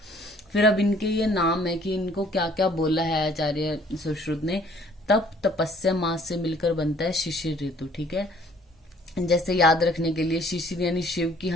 फिर अब इनके ये नाम है कि इनको क्या क्या बोला है आचार्य सुश्रुत ने। तप तपस्या मास से मिलकर बनता है शिशिर ऋतु। ठीक है, जैसे याद रखने के लिए शिशिर यानी शिव की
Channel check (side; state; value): both; normal; correlation 0.58